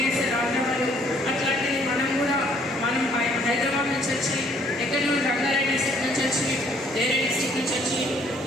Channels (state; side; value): normal; both; correlation 0.62